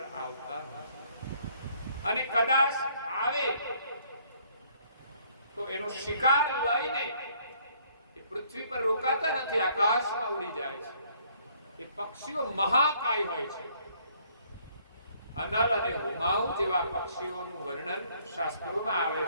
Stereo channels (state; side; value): inverted; both; correlation -0.64